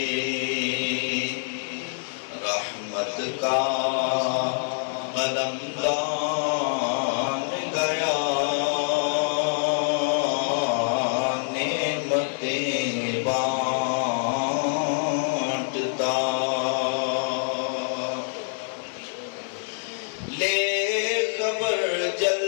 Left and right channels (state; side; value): silent; right; digital silence